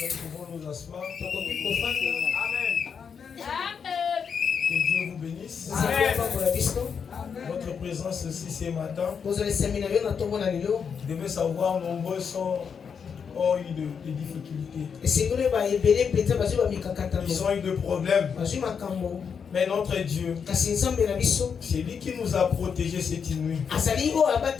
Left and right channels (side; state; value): right; quieter; 6.6 dB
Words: Nous pouvons nous asseoir. Amen. Que Dieu vous bénisse. Votre présence aussi ce matin. Vous devez savoir, nombreux ont eu des difficultés. Ils ont eu des problèmes. Mais notre Dieu, c'est lui qui nous a protégés cette nuit.